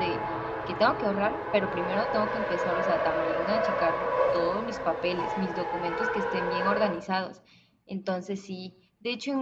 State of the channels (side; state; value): both; identical; correlation 1.00